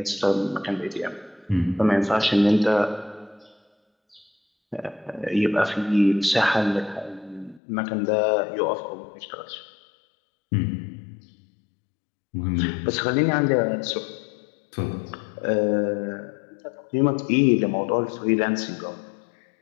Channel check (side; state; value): right; drops out; at 7.6 s